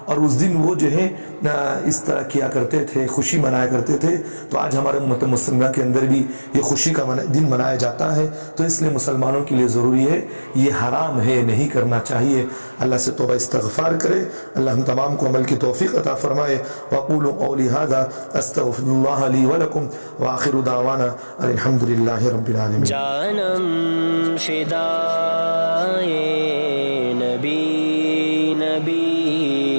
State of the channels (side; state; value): both; inverted; correlation -1.00